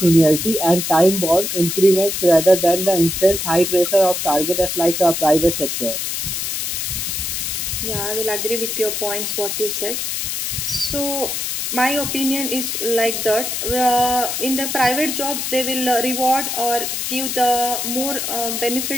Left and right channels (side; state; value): left; noise; hiss, 2 dB below the sound